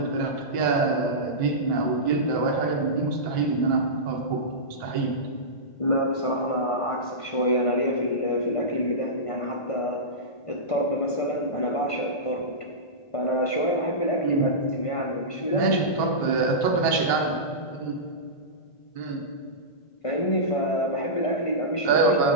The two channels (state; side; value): late; right; 1.5 ms